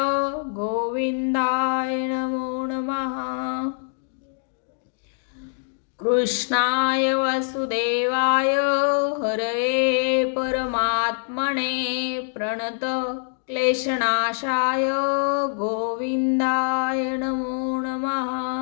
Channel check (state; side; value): silent; right; 62 dB below the other